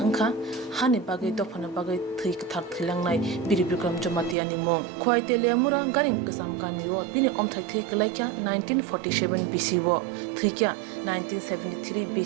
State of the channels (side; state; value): left; drops out; at 4.4 s